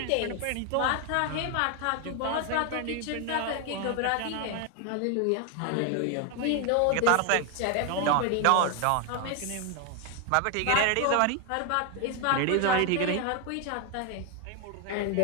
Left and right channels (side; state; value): both; different; correlation 0.01